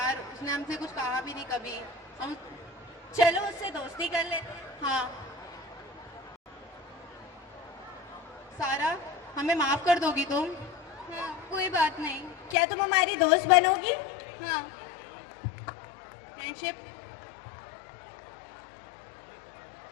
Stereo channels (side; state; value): right; drops out; at 12.6 s